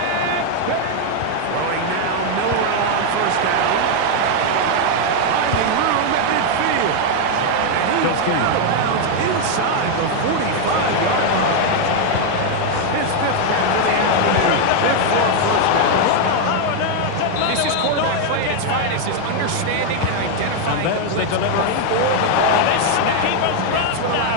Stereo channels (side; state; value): both; different; correlation 0.01